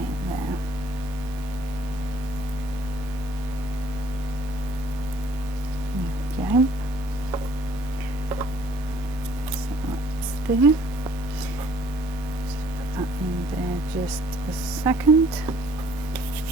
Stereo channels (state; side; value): noise; right; rumble, 20 dB below the sound